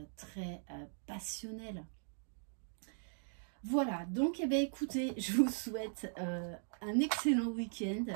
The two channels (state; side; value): silent; left; digital silence